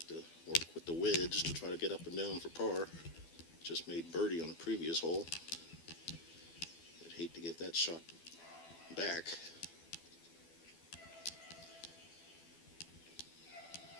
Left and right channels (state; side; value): late; right; 12 ms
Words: to work with the wedge to try to get up and down for par. Just made birdie on the previous hole. I'd hate to give that shot back.